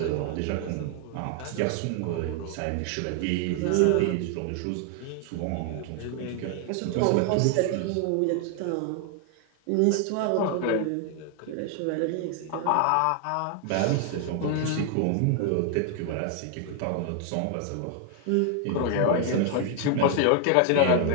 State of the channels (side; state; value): both; different; correlation 0.00